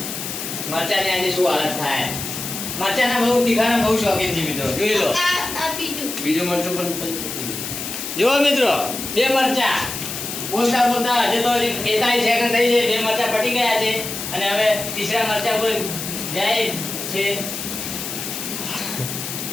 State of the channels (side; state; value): left; noise; hiss, 6 dB below the sound